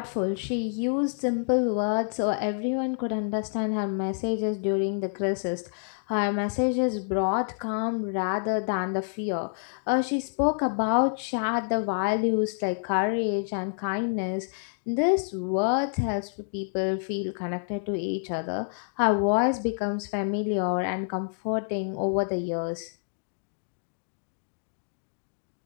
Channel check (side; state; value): right; silent; digital silence